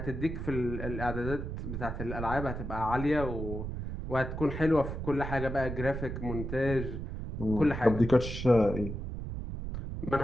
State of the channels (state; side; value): noise; right; rumble, 6 dB below the sound